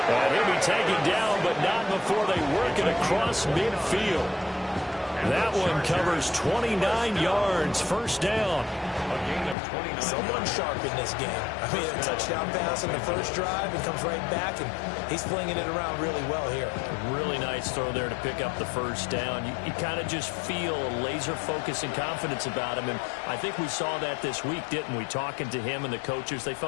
And he'll be taken down, but not before they work it across midfield. That one covers 29 yards, first down. Someone sharp in this game. I mean, a touchdown pass in the first drive and comes right back, and he's flinging it around really well here. Really nice throw there to pick up the first down. You kind of just feel a laser focus and confidence about him, and I think we saw that this week, didn't we? Talking to him and the coaches, they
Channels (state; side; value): drops out; right; at 9.6 s